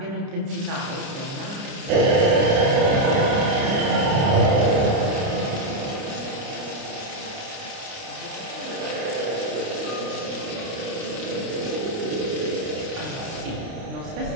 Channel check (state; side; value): late; left; 29 ms